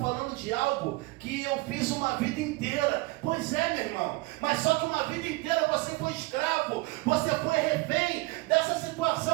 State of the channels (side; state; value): left; quieter; 22.8 dB